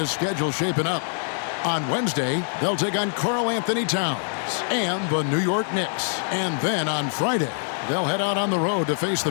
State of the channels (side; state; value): right; silent; digital silence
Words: schedule shaping up. On Wednesday, they'll take on Karl Anthony Towns and the New York Knicks. And then on Friday, they'll head out on the road to face the